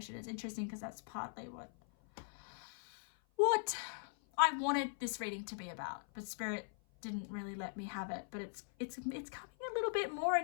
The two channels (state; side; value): silent; right; 51 dB below the other